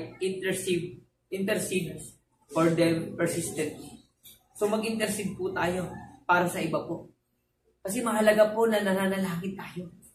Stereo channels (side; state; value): both; identical; correlation 1.00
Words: intercede for them persistently. So mag-intercede po tayo para sa iba po. Kasi mahalaga po na nananalangin tayo.